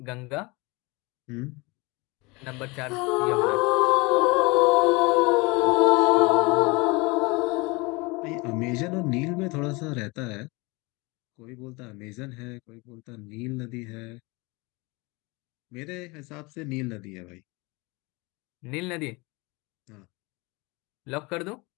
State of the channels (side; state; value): right; quieter; 25.9 dB